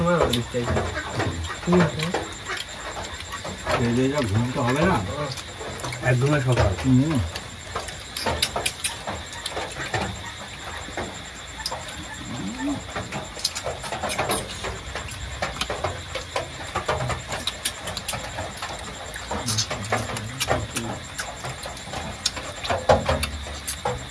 আবার দিতে আইছিল ঘুমতে হবে না একদমই সকাল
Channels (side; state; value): both; identical; correlation 1.00